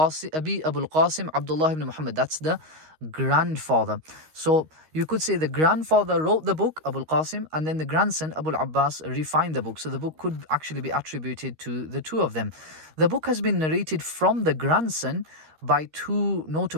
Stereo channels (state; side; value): late; left; 13 ms